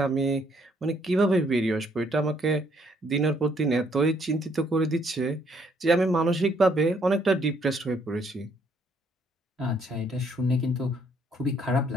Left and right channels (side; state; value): both; normal; correlation 0.68